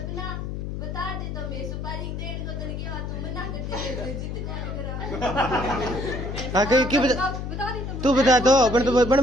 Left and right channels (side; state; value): left; noise; hum, 5 dB below the sound